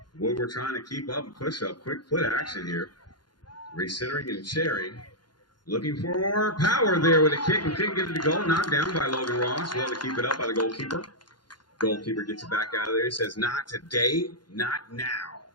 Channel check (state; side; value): late; right; 0.71 ms